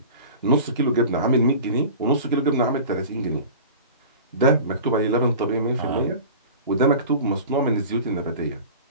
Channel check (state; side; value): inverted; both; correlation -0.38